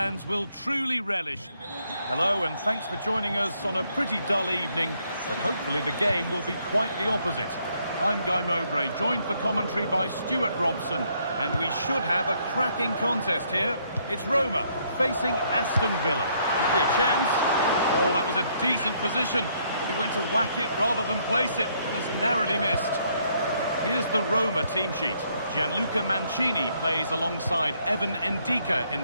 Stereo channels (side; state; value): both; inverted; correlation -0.70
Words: will truly relish. Hello, and thanks for joining us on a pretty dull evening, but hopefully the game will be quite the opposite. I'm Guy Mowbray, joined for commentary by Stuart Robson, and we should have a cracking contest here. It's Roma facing Aston Villa. Could be a chance. Oh, that was a decent position, but he went to whack it rather than place it, and has narrowly missed. Here's the Roma team sheet. Gianluca Mancini plays alongside Evan Ndika in